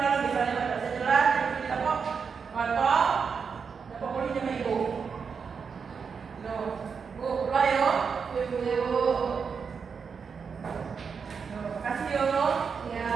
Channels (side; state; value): left; quieter; 5.9 dB